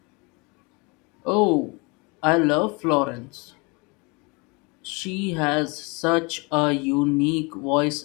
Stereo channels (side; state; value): right; quieter; 28.9 dB